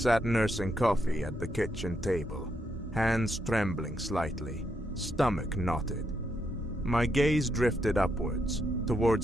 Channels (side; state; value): both; normal; correlation 0.79